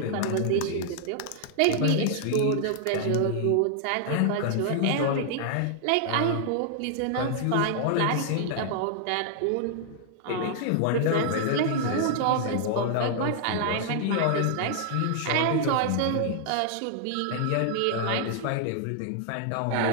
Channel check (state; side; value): different; both; correlation 0.00